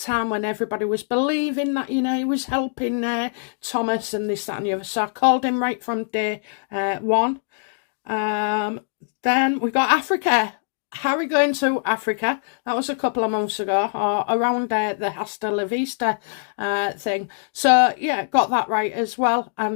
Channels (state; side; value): silent; right; digital silence